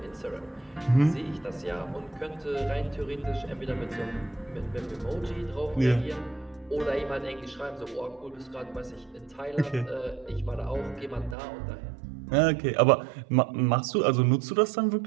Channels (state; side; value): drops out; left; at 11.4 s